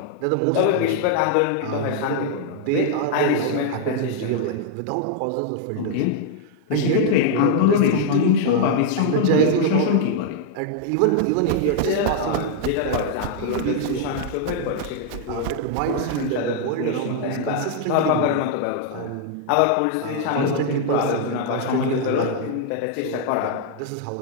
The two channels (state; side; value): different; both; correlation -0.01